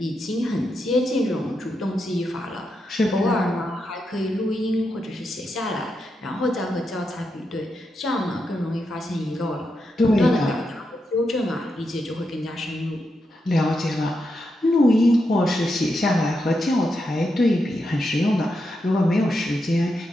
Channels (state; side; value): normal; both; correlation 0.85